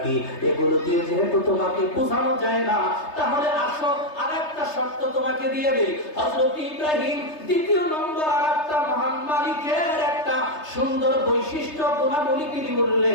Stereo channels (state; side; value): late; right; 3.3 ms